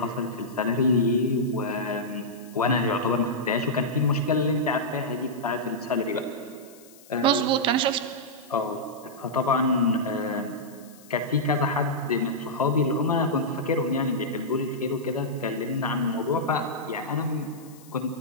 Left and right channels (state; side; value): noise; left; hiss, 24 dB below the sound